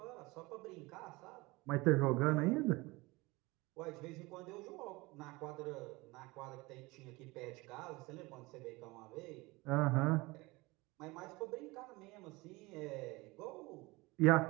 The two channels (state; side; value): quieter; left; 22.8 dB